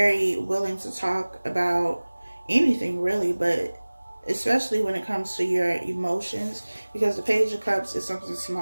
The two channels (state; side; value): inverted; both; correlation -1.00